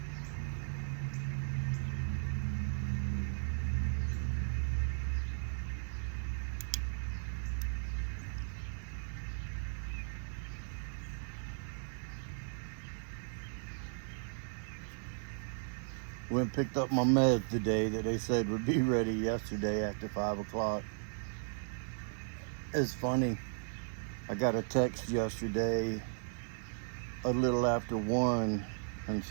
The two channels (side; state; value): left; silent; digital silence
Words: Went and picked up my meds today that they said would be ready yesterday after 5 o'clock. It's funny. I got a text yesterday a little after 1 and